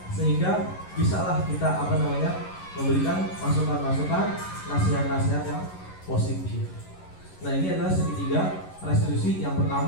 sehingga bisalah kita memberikan masukan-masukan, nasihat-nasihat yang positif. Nah, ini adalah segitiga restitusi. Yang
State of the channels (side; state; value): right; late; 11 ms